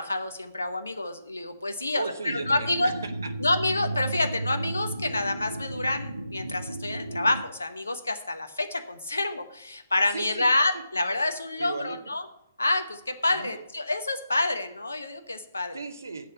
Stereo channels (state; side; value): inverted; both; correlation -0.87